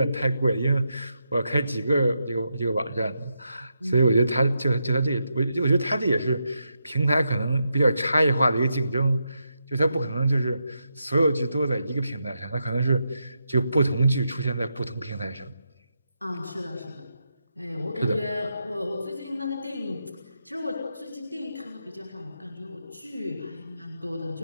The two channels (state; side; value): inverted; both; correlation -0.84